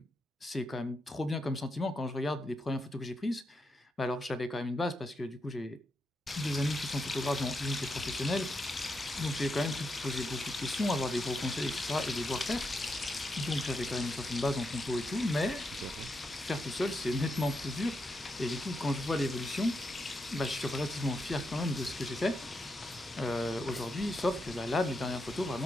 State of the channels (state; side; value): normal; both; correlation 0.84